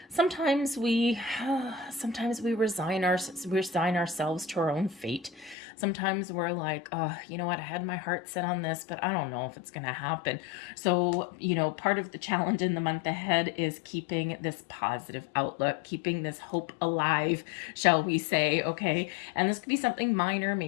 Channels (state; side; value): drops out; right; at 5.6 s